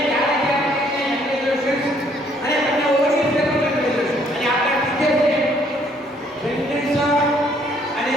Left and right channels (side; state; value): both; normal; correlation 0.65